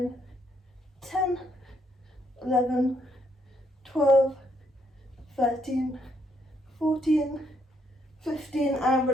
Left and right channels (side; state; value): both; normal; correlation 0.73